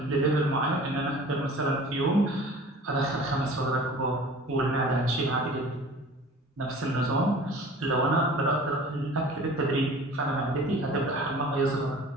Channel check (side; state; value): both; normal; correlation 0.44